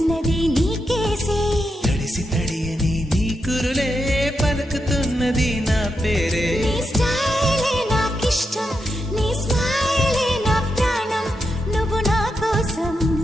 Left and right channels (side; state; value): both; normal; correlation 0.85